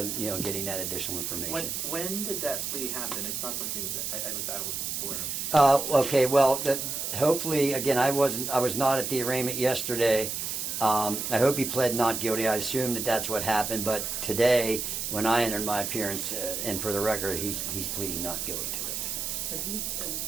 getting that additional information. When did that plea happen? It's not something that I was aware of. Okay, well, hopefully, again, I was not at the arraignment yesterday. I hope he pled not guilty. I assume that that's what happened. But today, when I entered my appearance, and for the record, he's pleading not guilty to this offense. So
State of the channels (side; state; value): right; noise; hiss, 3 dB below the sound